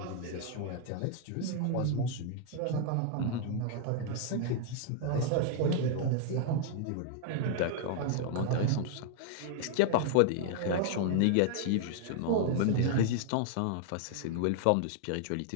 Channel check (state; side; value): different; both; correlation 0.00